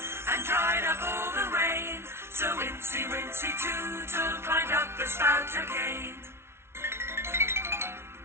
and dried up all the rain. So Wincy, Wincy Tootle climbed up the spout again.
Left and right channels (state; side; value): late; left; 0.12 ms